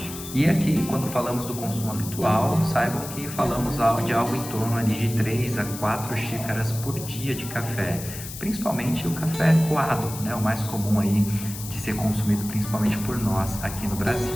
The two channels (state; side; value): noise; left; hiss, 11 dB below the sound